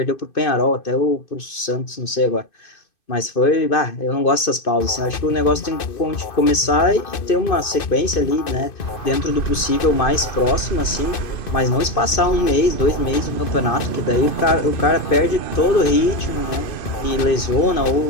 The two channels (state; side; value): late; right; 2.6 ms